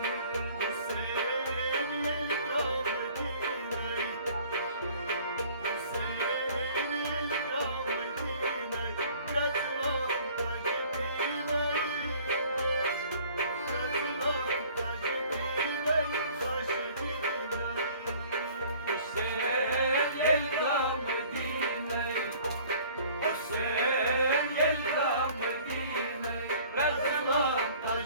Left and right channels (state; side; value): inverted; both; correlation -0.52